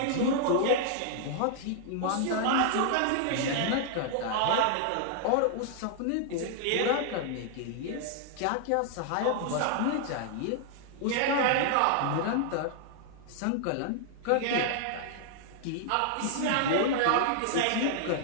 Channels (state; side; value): different; both; correlation -0.01